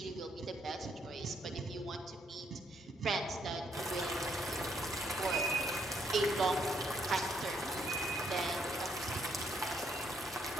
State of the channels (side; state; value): both; normal; correlation 0.71